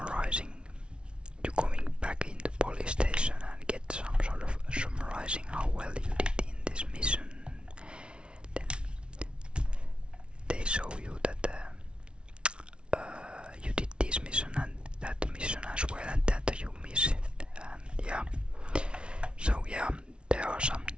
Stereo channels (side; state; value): left; late; 0.057 ms